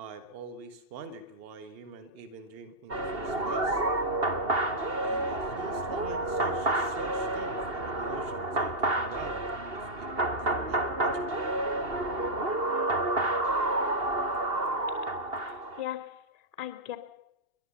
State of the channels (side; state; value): left; late; 2.8 ms